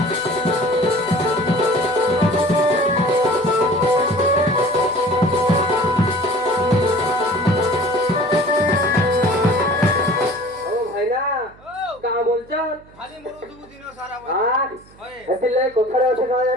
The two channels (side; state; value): right; noise; hum, 26 dB below the sound